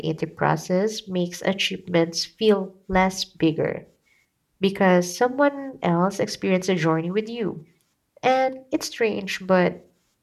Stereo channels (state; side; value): identical; both; correlation 1.00